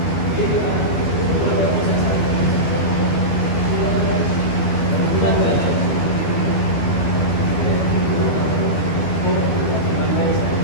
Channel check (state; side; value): late; right; 12 ms